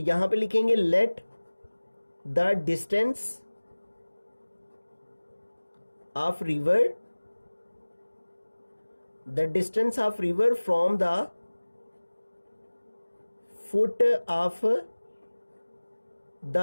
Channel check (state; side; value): inverted; both; correlation -1.00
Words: पे लिखेंगे let the distance of river, the distance of river from the foot of